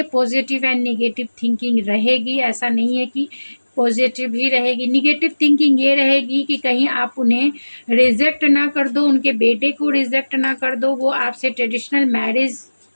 पॉजिटिव एंड नेगेटिव थिंकिंग रहेगी, ऐसा नहीं है कि पॉजिटिव ही रहेगी। नेगेटिव थिंकिंग ये रहेगी कि कहीं आप उन्हें रिजेक्ट ना कर दो, उनके बेटे को रिजेक्ट ना कर दो, वो आपसे ट्रेडिशनल मैरिज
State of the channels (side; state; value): both; inverted; correlation -1.00